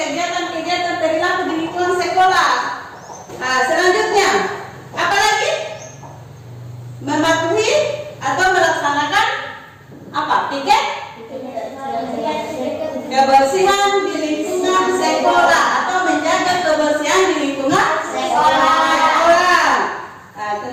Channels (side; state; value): both; identical; correlation 1.00